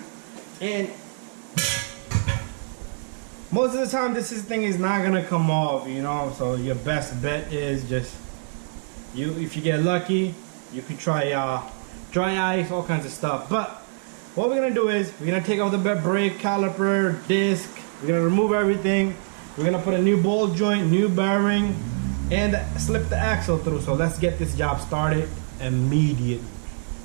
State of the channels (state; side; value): silent; left; digital silence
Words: And most of the time, this thing is not gonna come off, you know. So your best bet is just if you get lucky, you can try dry ice, all kinds of stuff. But what we're gonna do is we're gonna take off the brake caliper, disc. We're gonna remove everything. We're gonna put a new ball joint, new bearing, and slip the axle through. So let's get this job started immediately.